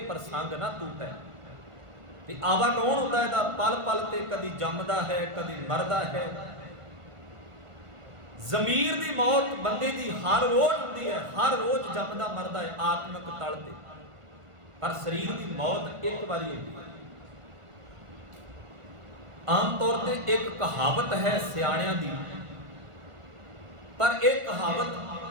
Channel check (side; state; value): left; late; 1.5 ms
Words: ਪ੍ਰਸੰਗ ਨਾ ਟੂਟੈ। ਤੇ ਆਵਾ ਗੌਣ ਹੁੰਦਾ ਇਹਦਾ ਪਲ ਪਲ ਤੇ ਕਦੀ ਜੰਮਦਾ ਹੈ, ਕਦੀ ਮਰਦਾ ਹੈ। ਜ਼ਮੀਰ ਦੀ ਮੌਤ ਬੰਦੇ ਦੀ ਹਰ ਰੋਜ਼ ਹੁੰਦੀ ਹੈ, ਹਰ ਰੋਜ਼ ਜੰਮਦਾ ਮਰਦਾ ਹੈ ਆਤਮਿਕ ਤਲ ਤੇ, ਪਰ ਸਰੀਰ ਦੀ ਮੌਤ ਇੱਕ ਵਾਰੀ ਹੁੰਦੀ ਹੈ। ਆਮ ਤੌਰ ਤੇ ਇੱਕ ਕਹਾਵਤ ਹੈ ਸਿਆਣਿਆਂ ਦੀ, ਪਰ ਇਹ ਕਹਾਵਤ